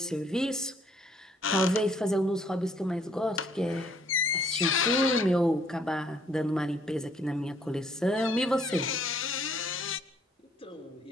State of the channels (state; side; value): normal; both; correlation 0.64